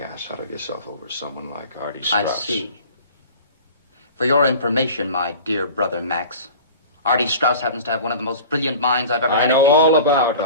out of yourself over someone like Artie Straus. I see. For your information, my dear brother Max, Artie Straus happens to have one of the most brilliant minds I've ever had. I know all about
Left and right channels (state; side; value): inverted; both; correlation -0.40